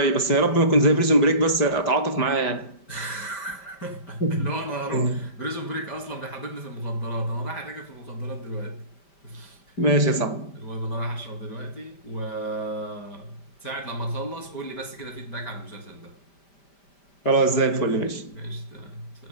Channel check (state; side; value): late; right; 5.1 ms